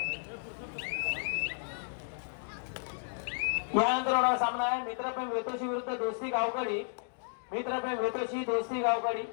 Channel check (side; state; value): right; silent; digital silence